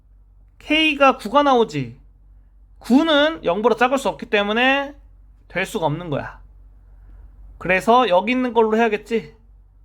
k가 9가 나오지. 9는 0보다 작을 수 없기 때문에 될 수가 없는 거야. 그래서 여기 있는 걸로 해야겠지.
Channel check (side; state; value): both; identical; correlation 1.00